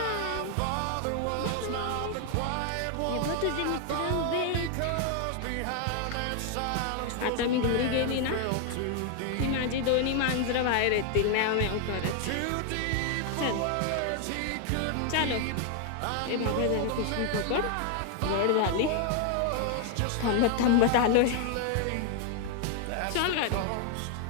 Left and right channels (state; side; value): different; both; correlation 0.00